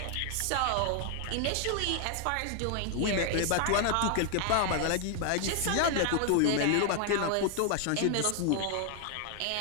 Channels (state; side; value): different; both; correlation 0.00